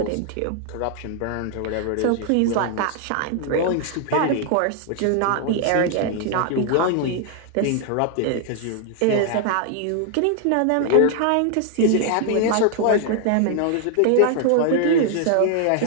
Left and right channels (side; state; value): both; different; correlation 0.00